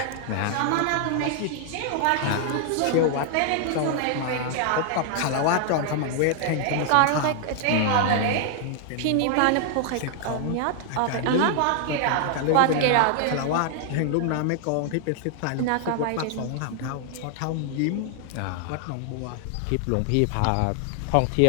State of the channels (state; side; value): different; both; correlation 0.00